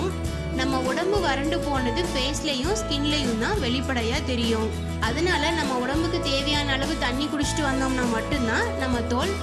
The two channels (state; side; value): identical; both; correlation 1.00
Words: நம்ம உடம்பு வறண்டு போனது ஃபேஸ்லையும் ஸ்கின்லையும் தான் வெளிப்படையாக தெரியும். அதனால நம்ம உடம்புக்கு தேவையான அளவு தண்ணி குடிச்சிட்டு வந்தோம்னா மட்டும்தான் நம்ம தோல்